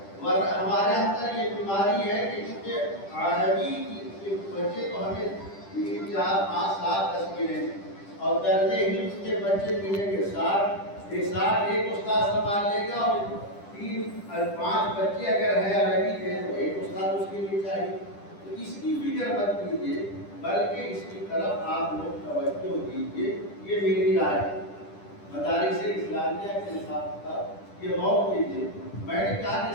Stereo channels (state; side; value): late; right; 10 ms